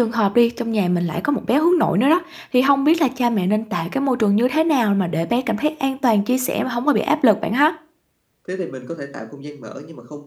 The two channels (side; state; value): both; identical; correlation 1.00